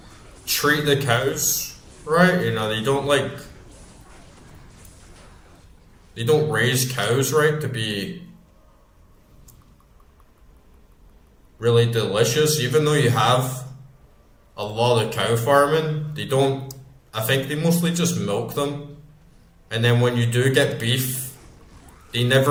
treat the cows right. They don't raise cows right to be really delicious. Even though you have a lot of cow farming, they don't. I think they mostly just milk them, and then when you do get beef, they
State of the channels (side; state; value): both; identical; correlation 1.00